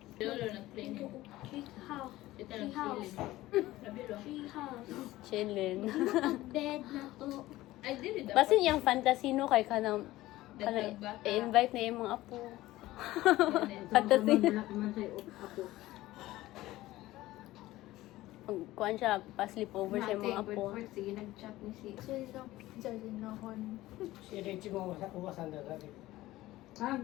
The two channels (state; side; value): quieter; right; 16.8 dB